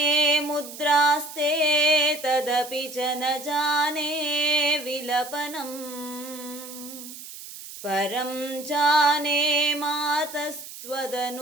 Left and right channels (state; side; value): noise; right; hiss, 13 dB below the sound